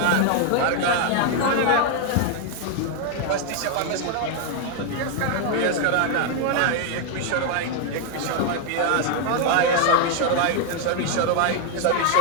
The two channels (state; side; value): different; both; correlation 0.00